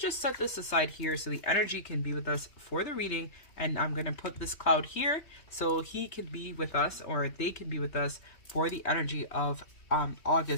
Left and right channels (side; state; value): right; late; 3.3 ms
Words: set this aside here so the energy can be with us for the reading, and I'm going to put this cloud here so he can be with us, or they can be with us for the energy of